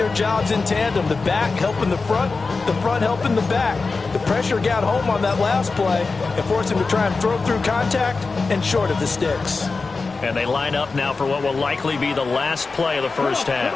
jobs in tandem. The back helping the front helping the back. The pressure got home on that last play and forced him to try and throw through contact and short of the sticks. And they line up now for what will likely be the last play of the first half.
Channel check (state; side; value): quieter; right; 4.1 dB